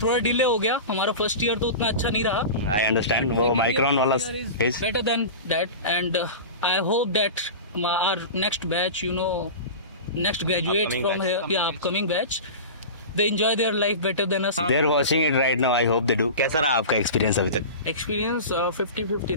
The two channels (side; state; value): both; inverted; correlation -0.30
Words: थोड़ा डिले हो गया। हमारा फर्स्ट ईयर तो उतना अच्छा नहीं रहा। आई अंडरस्टैंड, वो माइक्रोन वाला phase better than that, and I hope that our next batch, you know, next graduate from here, या upcoming batch, they enjoy their life better than us. They're watching it right now, I hope they do. कैसा रहा आपका experience अभी तक? Experience 50-50